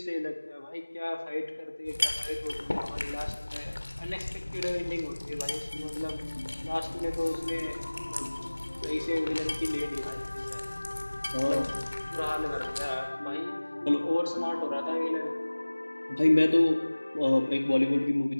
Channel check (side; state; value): both; inverted; correlation -1.00